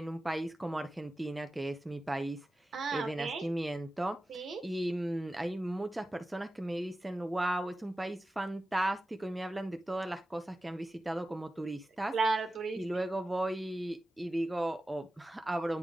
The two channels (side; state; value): both; normal; correlation 0.94